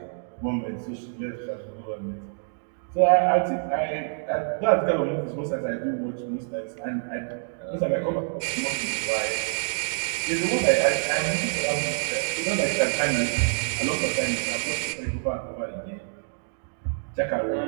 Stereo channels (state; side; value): silent; left; digital silence